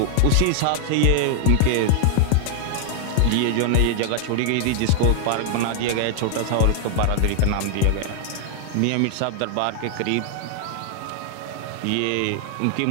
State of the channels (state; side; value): different; both; correlation 0.00